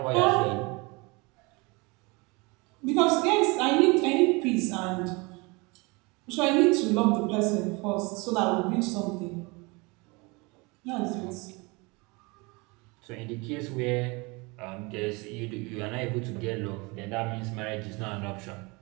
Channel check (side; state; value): left; quieter; 26.9 dB